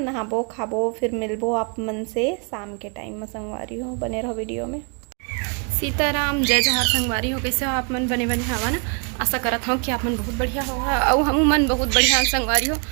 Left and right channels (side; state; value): left; quieter; 37.7 dB